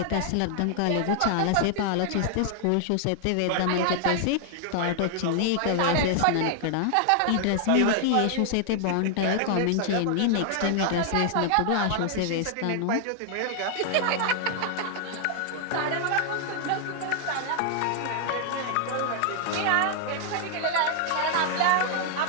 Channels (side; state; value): both; different; correlation 0.00